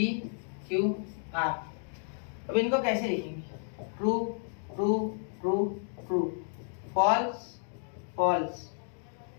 क्यू आर। अब इनको कैसे लिखेंगे, true true true true, false false,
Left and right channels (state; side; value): silent; right; 56 dB below the other